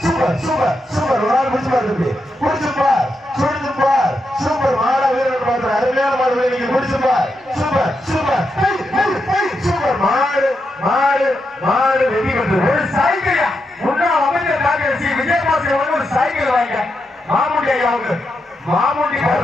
சூப்பர் சூப்பர் சூப்பர் ஒரு ஆள் முடிச்சு பாரு, முடிச்சுப்பார் சுடுப்பார். சூப்பர் மாட வீரர் பார்த்து அருமையான மாடு நீங்க முடிச்சுப்பார். சூப்பர் சூப்பர் சூப்பர் மாடு மாடு மாடு வெற்றி பெற்று ஒரு சைக்கிள் முன்னாள் அமைச்சர் டாக்டர் சி விஜயபாஸ்கர் ஒரு சைக்கிள் வாங்க. மாமுண்டி ஐயாவுக்கு மாமுண்டி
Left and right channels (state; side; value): normal; both; correlation 0.85